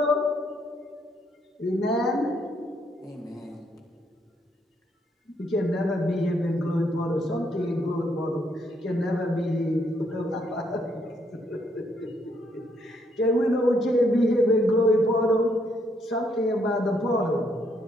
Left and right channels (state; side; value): normal; both; correlation 0.73